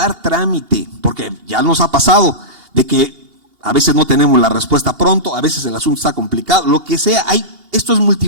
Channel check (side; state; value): left; late; 2.8 ms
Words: trámite, porque ya nos ha pasado de que a veces no tenemos la respuesta pronto, a veces el asunto está complicado, lo que sea, esto es